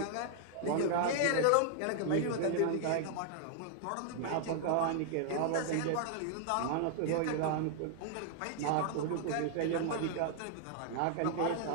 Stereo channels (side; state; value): both; different; correlation -0.01